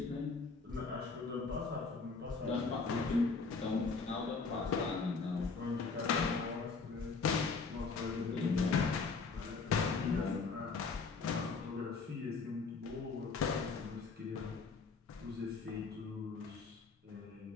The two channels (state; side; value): quieter; right; 4.5 dB